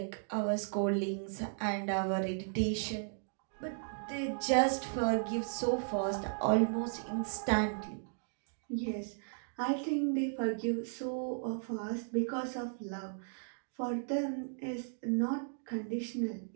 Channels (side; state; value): left; silent; digital silence